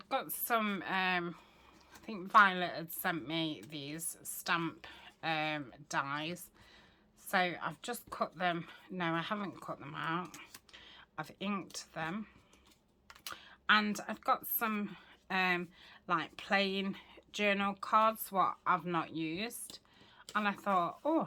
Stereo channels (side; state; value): both; identical; correlation 1.00